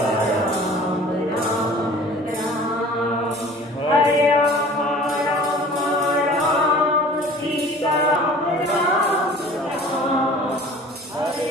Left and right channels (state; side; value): normal; both; correlation 0.46